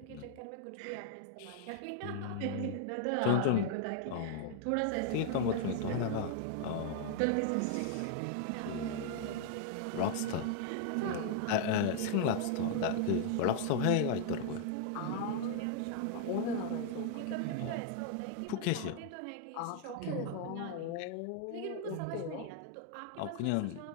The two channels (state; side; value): different; both; correlation -0.01